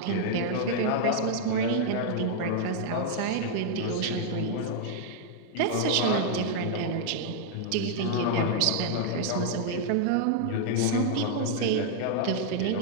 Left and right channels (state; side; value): different; both; correlation -0.01